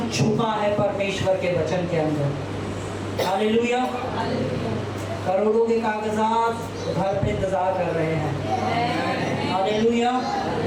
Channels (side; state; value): both; identical; correlation 1.00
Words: छुपा है परमेश्वर के वचन के अंदर। हालेलुया। करोड़ों के कागजात घर पे इंतजार कर रहे हैं। हालेलुया।